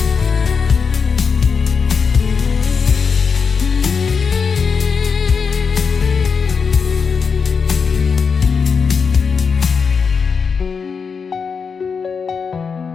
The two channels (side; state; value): right; quieter; 5.7 dB